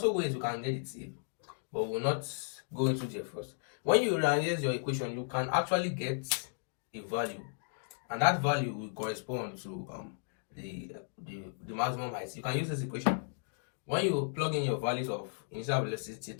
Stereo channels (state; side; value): silent; right; digital silence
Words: ways you can get the t, but we'll not go into there first. When you rearrange your equation, you can actually get a value, and that value will correspond to the maximum height. You can use this equation. When you plug in your values of initial velocity,